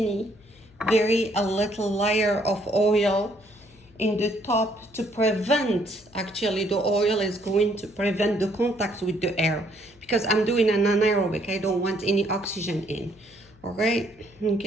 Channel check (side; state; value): left; noise; hum, 28 dB below the sound